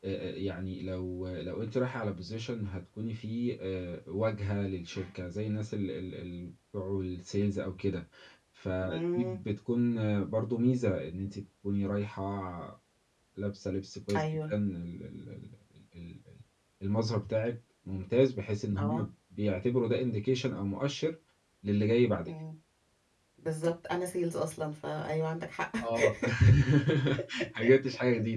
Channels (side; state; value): both; identical; correlation 1.00